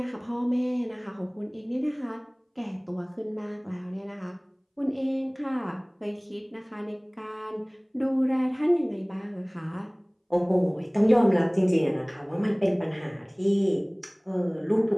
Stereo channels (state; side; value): identical; both; correlation 1.00